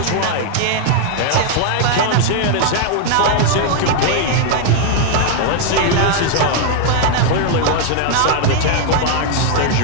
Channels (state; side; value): different; both; correlation 0.00